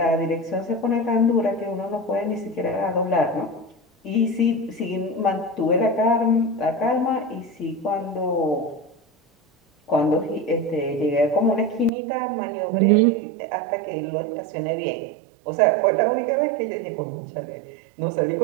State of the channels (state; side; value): drops out; left; at 11.9 s